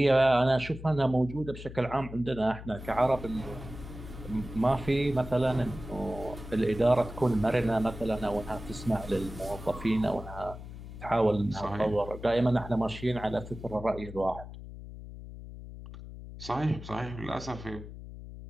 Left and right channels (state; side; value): noise; left; hum, 12 dB below the sound